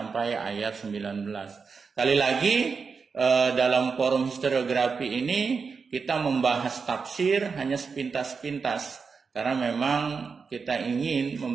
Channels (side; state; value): left; quieter; 5.3 dB